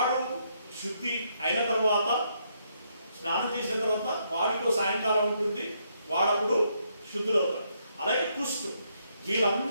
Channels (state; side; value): inverted; both; correlation -0.75